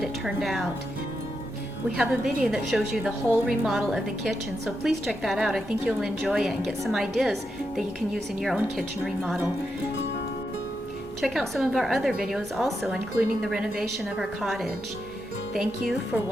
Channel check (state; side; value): noise; left; hum, 24 dB below the sound